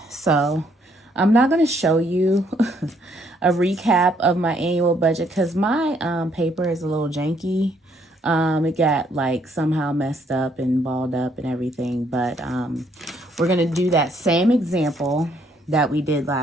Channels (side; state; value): both; normal; correlation 0.69